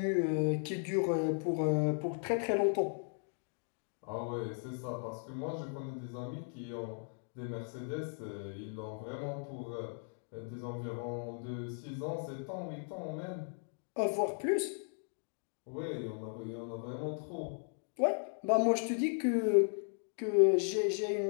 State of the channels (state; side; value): silent; right; 53 dB below the other